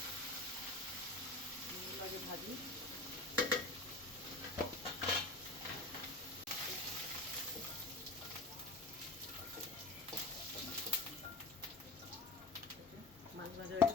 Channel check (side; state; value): right; quieter; 3.2 dB